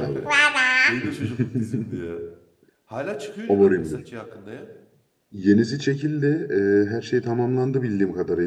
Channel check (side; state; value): both; identical; correlation 1.00